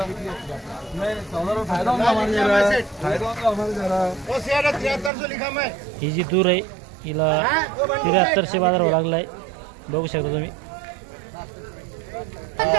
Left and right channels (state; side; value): drops out; left; at 5.1 s